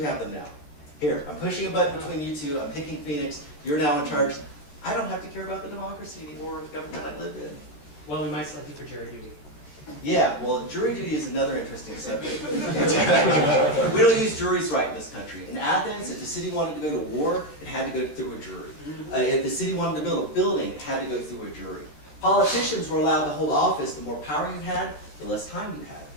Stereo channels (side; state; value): right; late; 14 ms